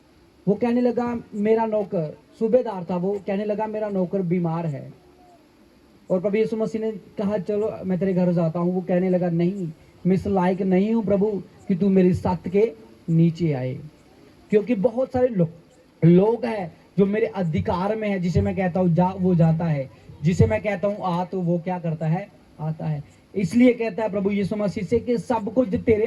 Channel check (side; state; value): both; identical; correlation 1.00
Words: वो कहने लगा, मेरा नौकर, सूबेदार था, वो कहने लगा मेरा नौकर बीमार है। और प्रभु यीशु मसीह ने कहा, चलो मैं तेरे घर जाता हूँ। वो कहने लगा, नहीं, मैं इस लायक नहीं हूँ प्रभु कि तू मेरी छत के नीचे आए, क्योंकि बहुत सारे लोग हैं जो मेरे अधिकार में है। जिसे मैं कहता हूँ जा, वो जाता है, जिसे मैं कहता हूँ आ, तो वो क्या करता है? आता है। इसलिए कहता है प्रभु यीशु मसीह से कि सब कुछ तेरे